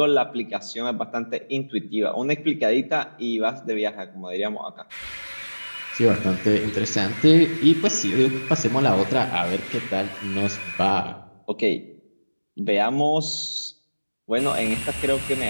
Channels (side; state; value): both; inverted; correlation -1.00